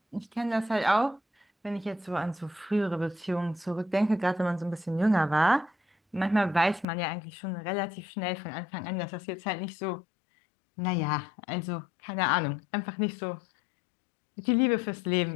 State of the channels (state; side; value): drops out; right; at 6.9 s